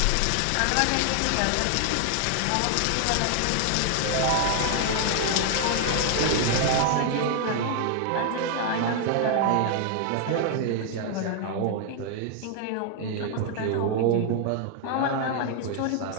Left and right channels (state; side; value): different; both; correlation 0.00